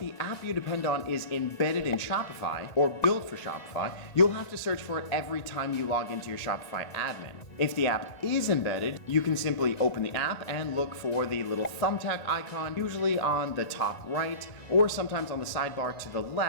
app you depend on is embedded in Shopify or built for Shopify, you'll have to search for it every time you log into your Shopify admin. If the app is embedded, you can simply open the app and look for the little thumbtack icon, usually on the top right, or sometimes on the sidebar to the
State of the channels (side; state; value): right; late; 1.9 ms